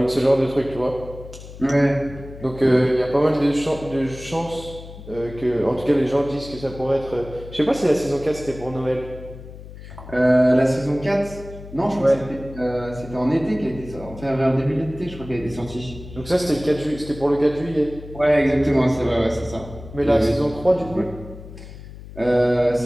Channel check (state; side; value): noise; left; hum, 15 dB below the sound